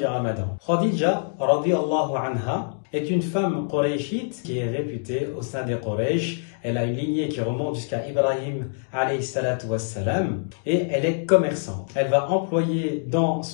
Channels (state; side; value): silent; right; digital silence